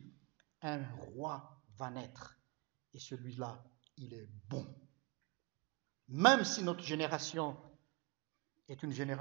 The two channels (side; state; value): left; quieter; 28.5 dB